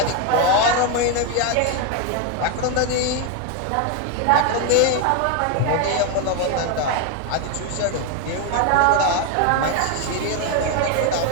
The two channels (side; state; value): both; different; correlation 0.01